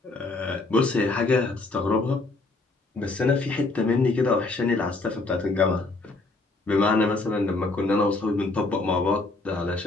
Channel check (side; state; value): right; quieter; 3.3 dB